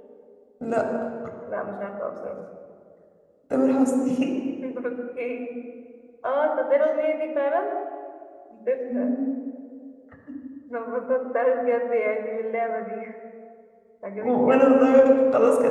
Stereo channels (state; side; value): identical; both; correlation 1.00